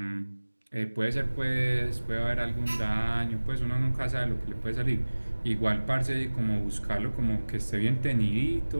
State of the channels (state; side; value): inverted; both; correlation -1.00